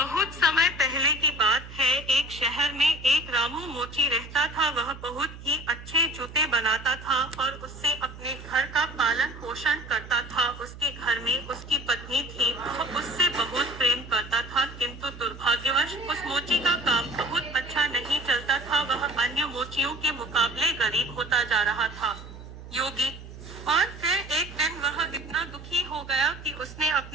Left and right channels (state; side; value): noise; right; hum, 14 dB below the sound